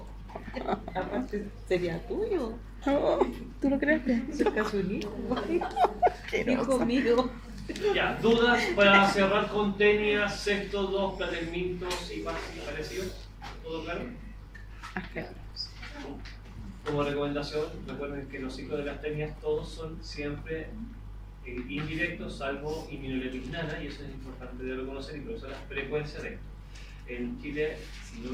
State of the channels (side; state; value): both; identical; correlation 1.00